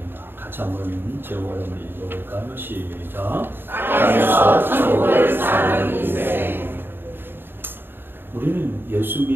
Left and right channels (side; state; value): left; late; 0.10 ms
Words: 같이 한번 제목을 한번 읽어볼까요? 시작. 땅에서 천국을 사는 인생. 우리는 예수